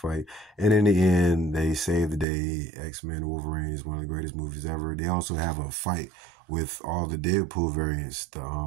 And in the end, they save the day. X-Men Wolverine is one of the greatest movies ever. They also have a fight with all the Deadpool variants.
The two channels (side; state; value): left; drops out; at 2.2 s